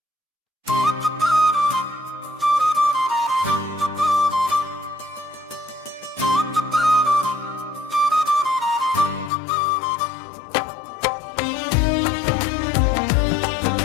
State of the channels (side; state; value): right; drops out; at 9.3 s